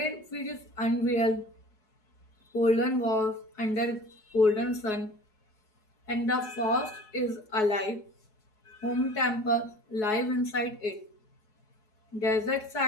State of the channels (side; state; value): right; late; 4.7 ms